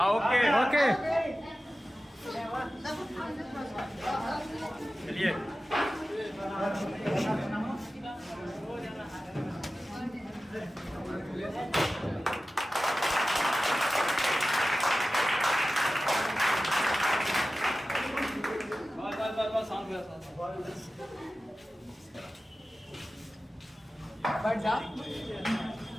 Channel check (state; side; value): normal; both; correlation 0.95